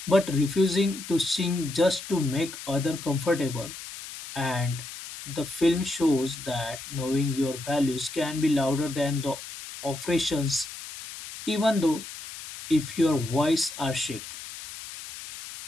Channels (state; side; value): noise; left; hiss, 12 dB below the sound